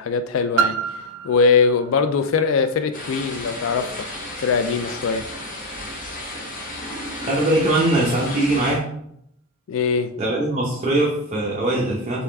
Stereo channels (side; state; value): both; normal; correlation 0.05